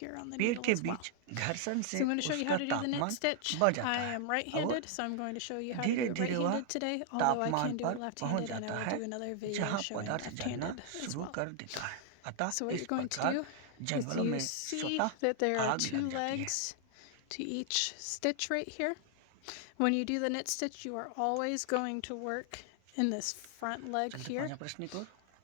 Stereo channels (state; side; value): different; both; correlation 0.00